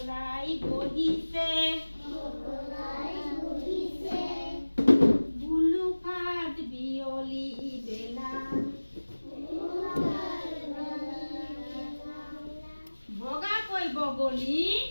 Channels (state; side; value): inverted; both; correlation -1.00